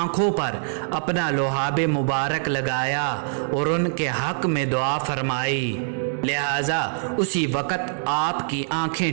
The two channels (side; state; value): left; silent; digital silence